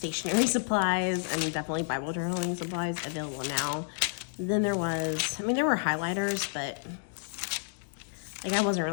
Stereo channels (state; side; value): silent; right; digital silence